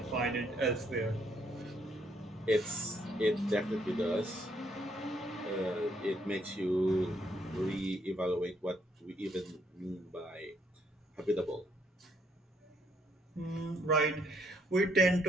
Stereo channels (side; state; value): both; normal; correlation 0.70